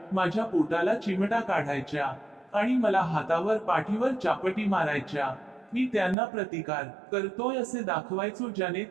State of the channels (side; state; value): left; drops out; at 6.2 s